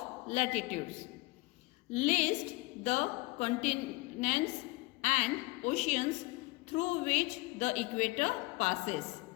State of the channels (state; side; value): quieter; right; 22.6 dB